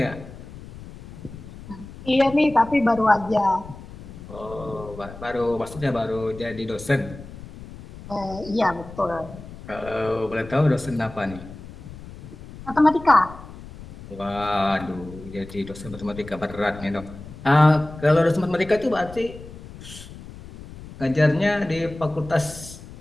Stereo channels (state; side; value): noise; left; rumble, 15 dB below the sound